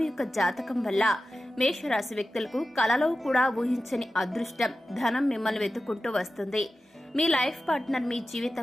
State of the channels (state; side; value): normal; both; correlation 0.93